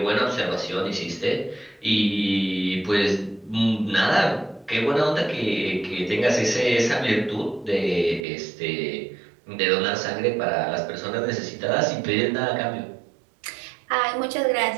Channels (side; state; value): left; drops out; at 8.2 s